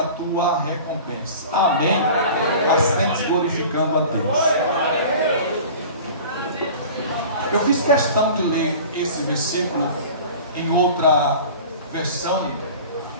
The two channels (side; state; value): both; inverted; correlation -0.40